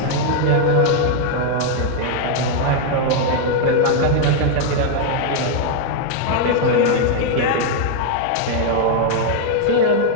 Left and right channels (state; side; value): different; both; correlation 0.00